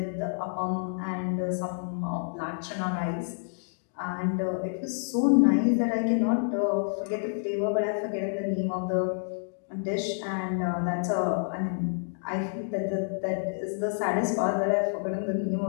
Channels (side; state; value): right; silent; digital silence